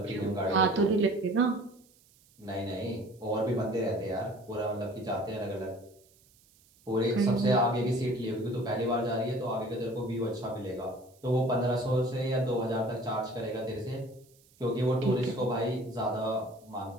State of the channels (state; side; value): noise; right; hiss, 30 dB below the sound